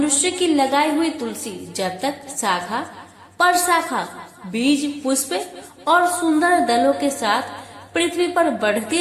की लगाई हुई तुलसी जब तक शाखा पर शाखा, बीज, पुष्प और सुंदर दलों के साथ पृथ्वी पर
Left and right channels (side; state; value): both; identical; correlation 1.00